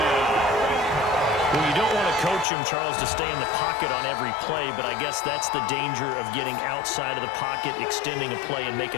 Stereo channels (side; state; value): right; drops out; at 2.5 s